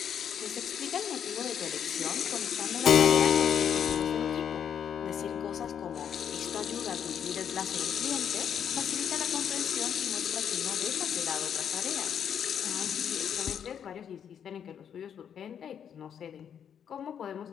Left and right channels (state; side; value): quieter; right; 8.4 dB